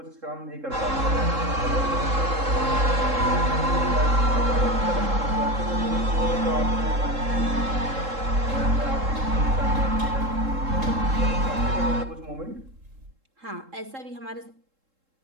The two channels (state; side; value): late; left; 3.7 ms